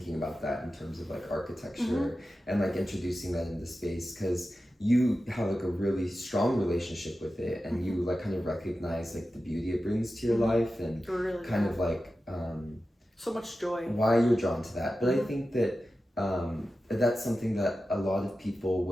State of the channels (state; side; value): normal; both; correlation 0.93